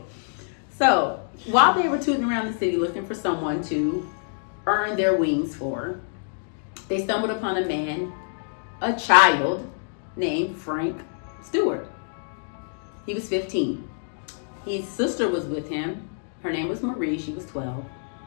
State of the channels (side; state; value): right; silent; digital silence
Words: So, while they were tooting around the city looking for someone to earn their wings for, they stumbled upon a child named Frank Stewart. He was 15. His sister was with him. Her name was Marie. She was 12.